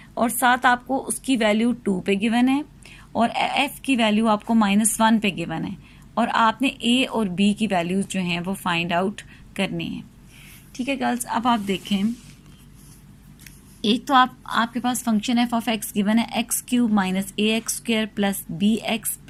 और साथ आपको उसकी वैल्यू 2 पे गिवन है और f की वैल्यू आपको -1 पे गिवन है और आपने a और b की वैल्यूज जो हैं वो फाइंड आउट करनी है। ठीक है गर्ल्स, अब आप देखें, एक तो आपके पास function f of x given है x cube minus a x square plus b x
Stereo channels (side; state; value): both; identical; correlation 1.00